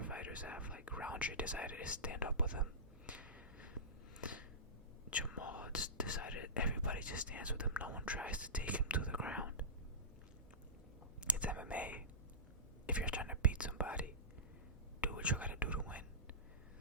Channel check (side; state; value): both; normal; correlation -0.18